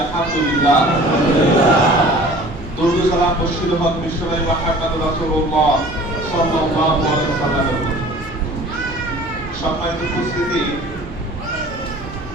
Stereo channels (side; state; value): both; normal; correlation 0.46